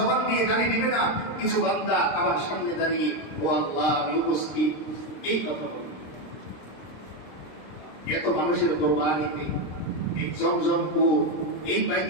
দিয়ে গালি দিবে না, কিছু বান্দা আবার সামনে দাঁড়িয়ে, ও আল্লাহ আমি উপস্থিত, এই কথা বলবে। এত মানুষের কোরবানিতে এই জমজম কূপ, এই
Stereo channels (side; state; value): right; late; 26 ms